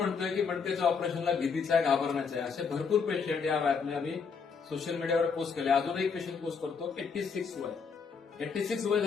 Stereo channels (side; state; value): right; quieter; 5.7 dB